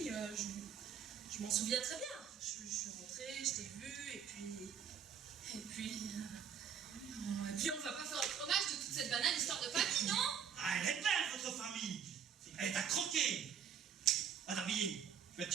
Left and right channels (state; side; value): quieter; left; 7.8 dB